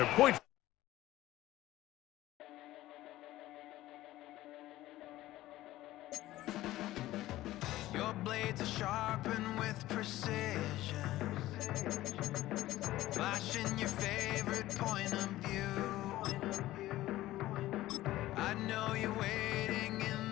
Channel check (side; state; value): right; quieter; 15.9 dB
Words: point. Your blades are sharpened with precision, flashing your favorite point of view. I know you're waiting in